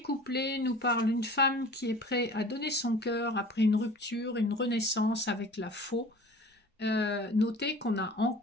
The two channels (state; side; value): normal; both; correlation 0.43